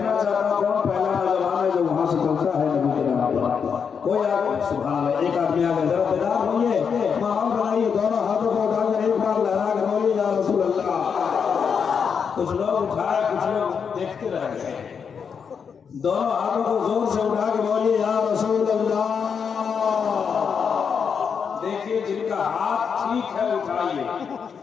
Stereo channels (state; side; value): quieter; right; 6.5 dB